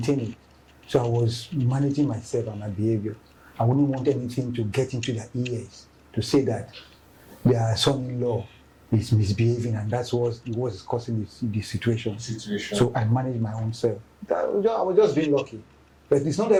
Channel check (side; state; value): both; identical; correlation 1.00